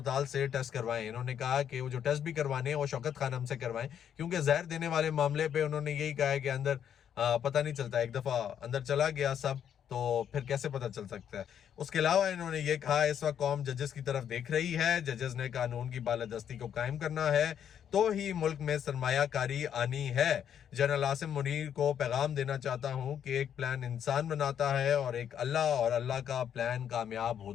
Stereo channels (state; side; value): quieter; right; 9.0 dB